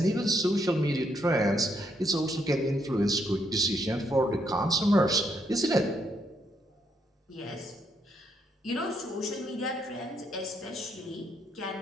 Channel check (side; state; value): both; normal; correlation 0.75